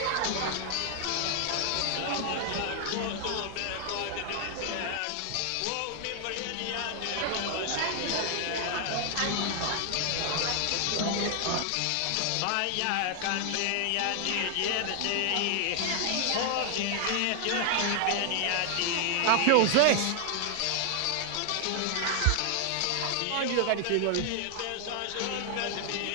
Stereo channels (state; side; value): different; both; correlation 0.00